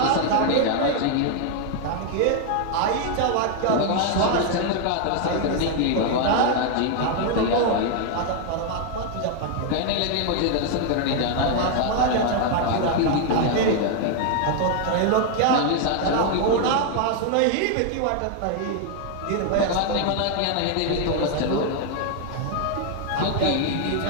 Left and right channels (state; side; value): different; both; correlation 0.00